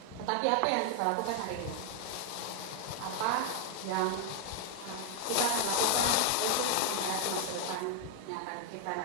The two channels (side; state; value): both; different; correlation 0.00